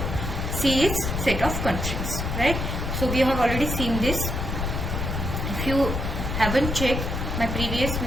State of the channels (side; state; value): left; noise; rumble, 2 dB below the sound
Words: c is set of constraints, right? So we have already seen this. If you haven't checked my previous